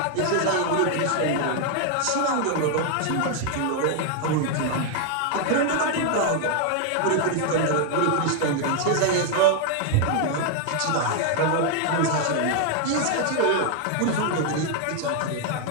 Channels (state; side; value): different; both; correlation 0.00